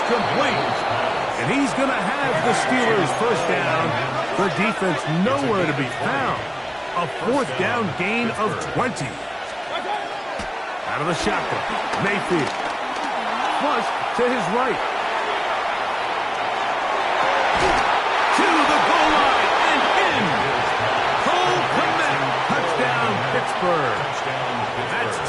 complete. And he's going to have the Steelers first down. The defense nowhere to be found. A fourth down gain of 20. Out of the shotgun, Mayfield. Flush to his right. To the goal line and in. Cole Clement. Touchdown, Pittsburgh. That's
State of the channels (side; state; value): both; identical; correlation 1.00